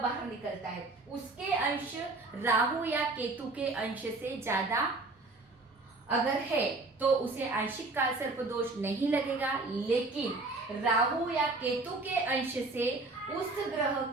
निकलता है, उसके अंश राहु या केतु के अंश से ज्यादा अगर है तो उसे आंशिक कालसर्प दोष नहीं लगेगा, लेकिन राहु या केतु के अंश से उस ग्रह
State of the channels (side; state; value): left; quieter; 3.3 dB